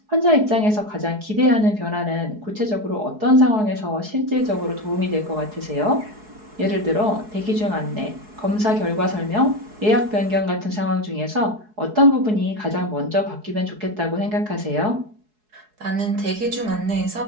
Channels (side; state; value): left; late; 4.7 ms